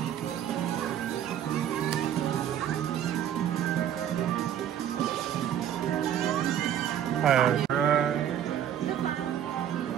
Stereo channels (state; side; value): quieter; left; 10.1 dB